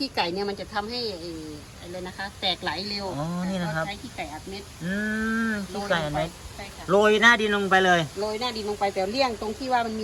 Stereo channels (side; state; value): both; identical; correlation 1.00